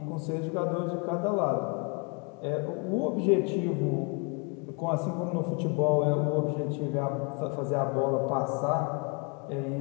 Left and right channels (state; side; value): quieter; right; 34.7 dB